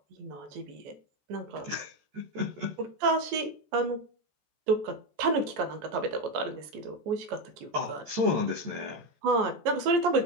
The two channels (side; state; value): left; late; 14 ms